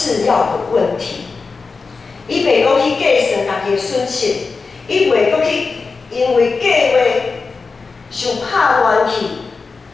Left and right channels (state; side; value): quieter; right; 4.4 dB